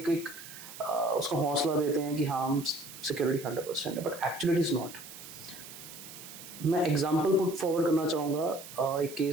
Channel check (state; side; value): noise; right; hiss, 14 dB below the sound